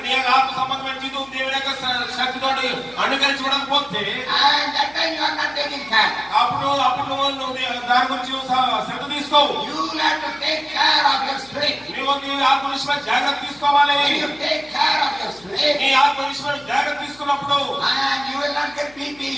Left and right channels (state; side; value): noise; left; hum, 25 dB below the sound